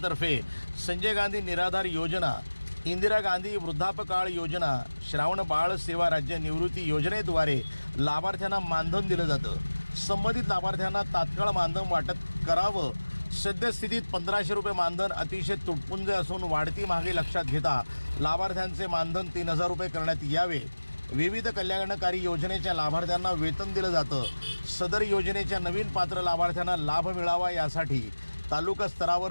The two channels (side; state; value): both; inverted; correlation -1.00